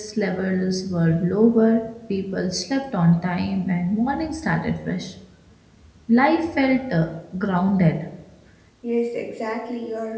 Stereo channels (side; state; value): both; identical; correlation 1.00